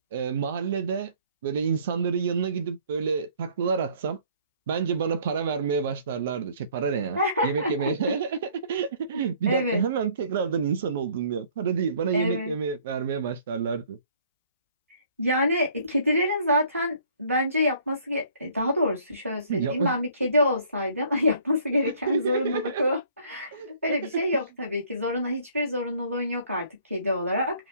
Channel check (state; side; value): inverted; both; correlation -0.58